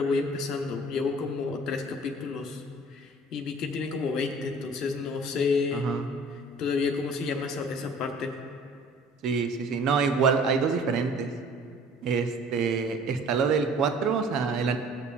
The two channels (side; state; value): both; normal; correlation 0.49